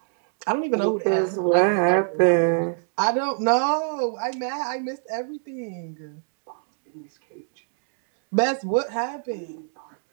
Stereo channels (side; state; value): left; silent; digital silence